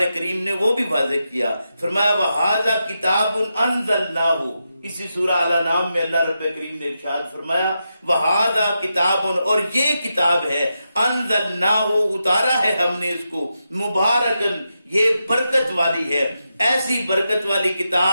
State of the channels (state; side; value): inverted; both; correlation -0.87